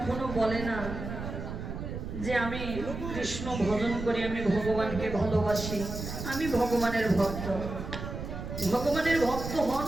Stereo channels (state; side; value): noise; right; rumble, 7 dB below the sound